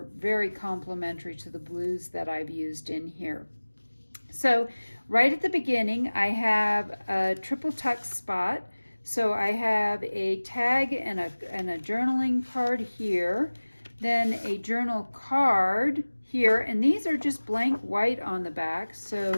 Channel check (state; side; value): inverted; both; correlation -1.00